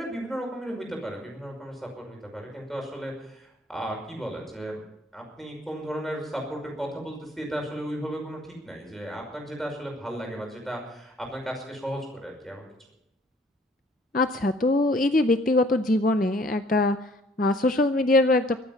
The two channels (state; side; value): normal; both; correlation 0.58